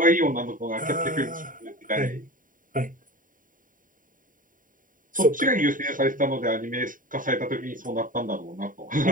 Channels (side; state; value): left; late; 0.39 ms